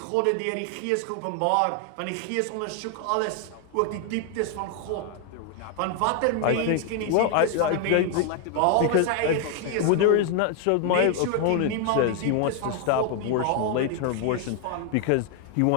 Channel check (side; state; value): both; different; correlation 0.00